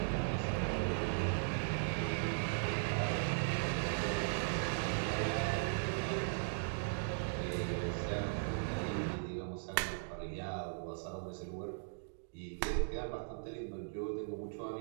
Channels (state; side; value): silent; left; digital silence